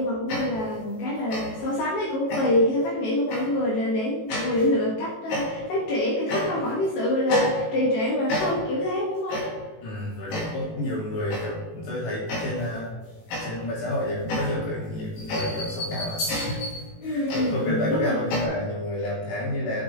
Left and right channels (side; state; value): right; late; 18 ms